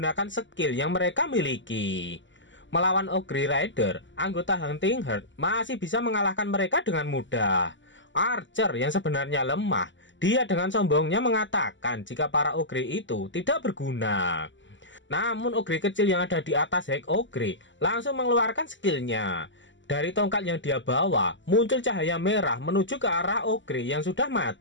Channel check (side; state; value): right; late; 0.54 ms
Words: skill yang mereka miliki. Melawan ogre rider, anggota Hunting Herd masih bisa mengalahkan mereka dengan mudah. Archer yang sebenarnya lemah, dia dengan sombongnya mengatakan jika para ogre itu tidak berguna. Namun ogre kecil yang ada di atas High Ogre langsung mengeluarkan skillnya. Dari tongkat yang dia bawa, muncul cahaya merah menuju ke arah Ogre yang sudah